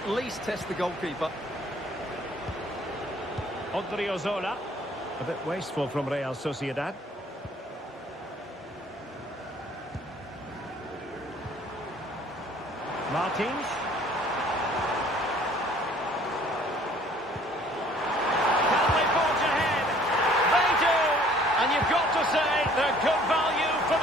least test the goalkeeper. Odriozola. A bit wasteful from Real Sociedad. Martins. Can they forge ahead? They do! And you've got to say they're good value for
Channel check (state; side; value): normal; both; correlation 0.56